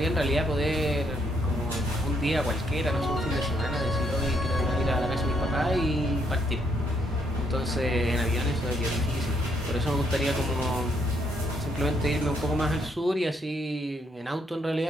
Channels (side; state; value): both; normal; correlation 0.73